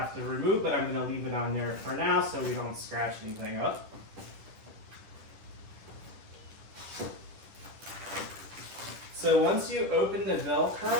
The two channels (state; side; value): late; left; 10 ms